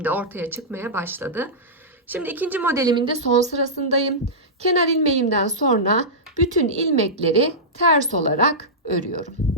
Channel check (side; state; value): both; normal; correlation -0.14